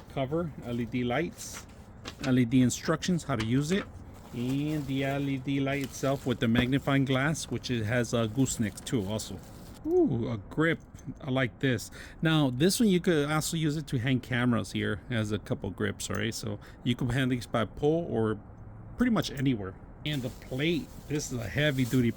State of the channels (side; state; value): both; identical; correlation 1.00